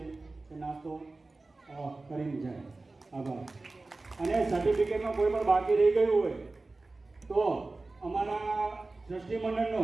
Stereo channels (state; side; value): quieter; left; 3.3 dB